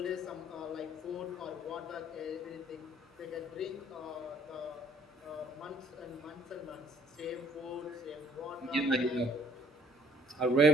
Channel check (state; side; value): normal; both; correlation 0.60